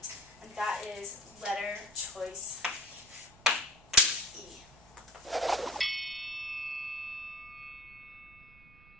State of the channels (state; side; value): noise; right; rumble, 24 dB below the sound